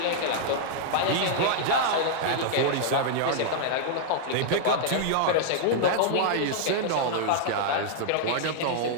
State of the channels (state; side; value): different; both; correlation -0.01